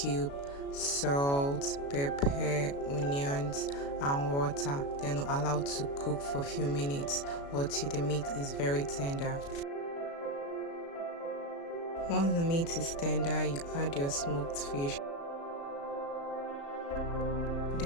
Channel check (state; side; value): late; right; 36 ms